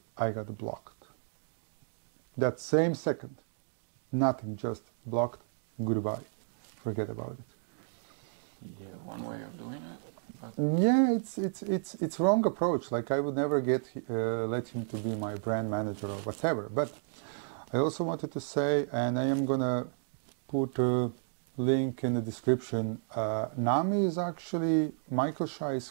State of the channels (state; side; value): silent; left; digital silence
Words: I got blocked. That same second. Nothing, just blocked, goodbye. Forget about it. Yeah, one way of doing it, but Yeah, it's wrong approach. Like I would never let him to be my brand manager or whatever. But I also wanted to say, and I am gonna put a link in the description. Nami is actually Michael Shai's